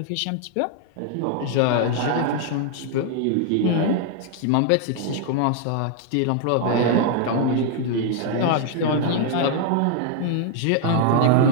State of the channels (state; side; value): different; both; correlation 0.00